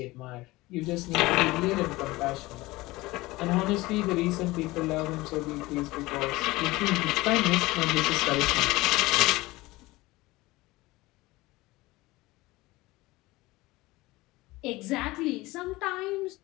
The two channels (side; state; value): right; quieter; 20.2 dB